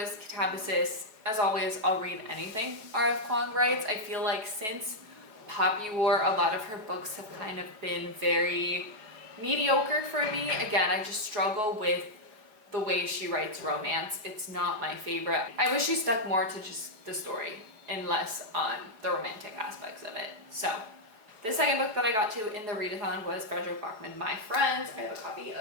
Catabasis. As always, I'll read anything R.F. Kuang writes. I feel like since Poppy War, a lot of her books have kind of been very mediocre for me. Again, I just struggle with the way she writes romance. It's not my favorite. I wish she stuck more to just the story and less on the romantic aspects of it. So the second book that I got to in the readathon was Frederick Bachman, My Friends. I have a copy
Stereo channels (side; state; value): left; late; 4.7 ms